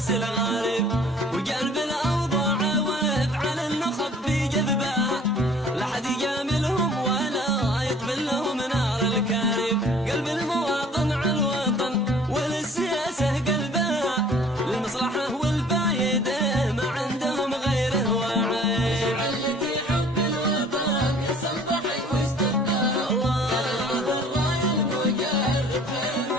الغارب. وقلب الأوضاع وافعل النخب في جذبها، لا حد يجاملهم ولا يطفل لهم نار الكارب. قلب المواطن على الوطن وللسياسة قلبها، للمصلحة والفايدة ما عندهم غيره وعيب. علتي حب الوطن يا صنبحي وش طبها، قال المثل راي المجرب خير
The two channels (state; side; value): normal; both; correlation 0.52